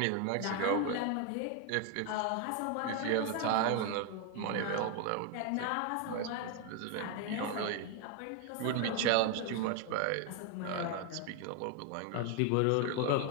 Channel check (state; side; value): different; both; correlation 0.01